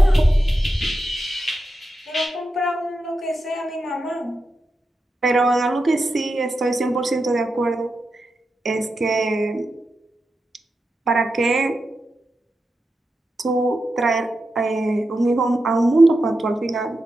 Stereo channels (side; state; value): both; normal; correlation 0.89